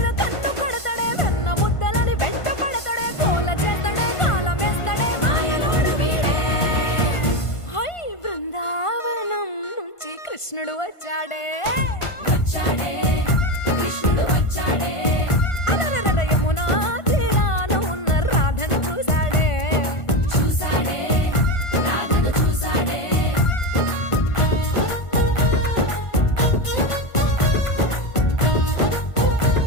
కన్ను కడతాడే వెన్న ముద్దలని వెంట పడతాడే కోల చేస్తాడే కాలం వేస్తాడే మాయలోడు వీడే హై బృందావనం నుంచి కృష్ణుడు వచ్చాడే కృష్ణుడు వచ్చాడే అలరల యమునా తీరాన ఉన్న రాధను చూశాడే రాధను చూసాడే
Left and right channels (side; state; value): right; late; 1.5 ms